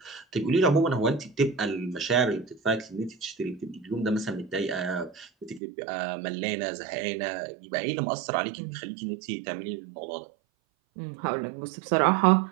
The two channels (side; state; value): left; drops out; at 5.6 s